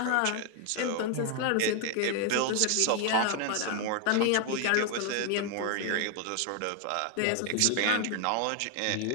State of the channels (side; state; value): both; different; correlation 0.00